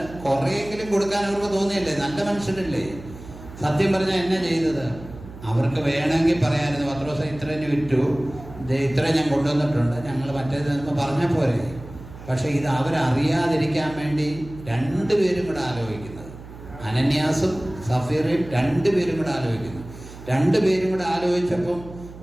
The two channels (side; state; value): right; noise; hum, 16 dB below the sound